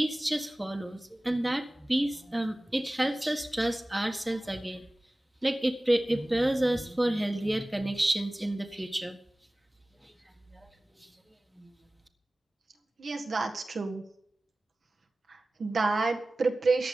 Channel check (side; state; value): both; normal; correlation 0.97